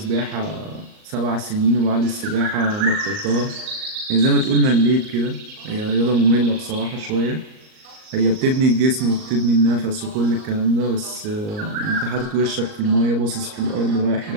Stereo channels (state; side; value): late; left; 38 ms